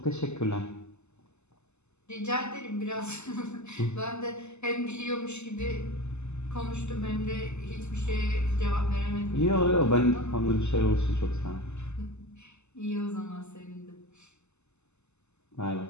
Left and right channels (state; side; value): late; right; 0.82 ms